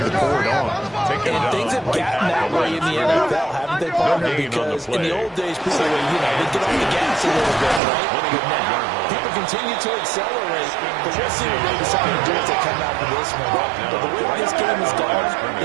pour it on. And things have gotten that way in the NFL, haven't they, partner? Because in the old days, people were, they'd get off the gas a little bit, right? But now, people continue to accelerate. But we'll see what they decide to do as they come out of this one. But the way this game is going,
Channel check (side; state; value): left; drops out; at 7.8 s